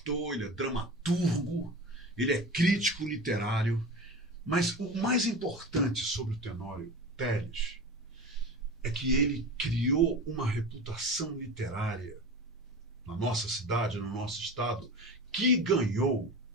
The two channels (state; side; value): normal; both; correlation 0.30